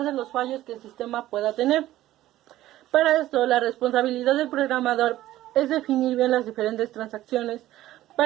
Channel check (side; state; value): left; quieter; 14.8 dB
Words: de los fallos que el sistema pueda tener. Para esto, la responsabilidad del programador es definir bien las diferentes transacciones